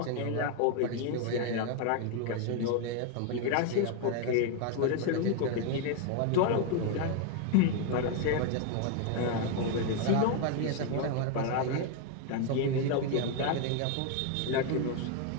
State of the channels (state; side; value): different; both; correlation 0.01